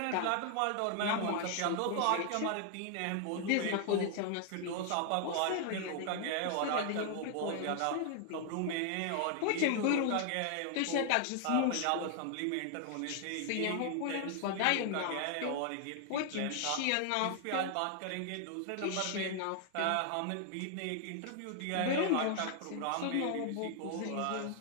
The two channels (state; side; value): different; both; correlation 0.00